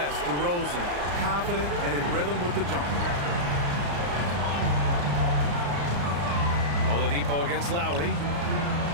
DeRozan, confident and in rhythm with the jump. Oladipo against Lowry.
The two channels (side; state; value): left; late; 35 ms